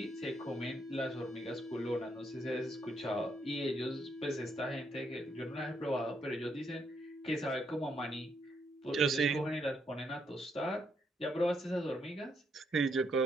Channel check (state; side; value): normal; both; correlation 0.76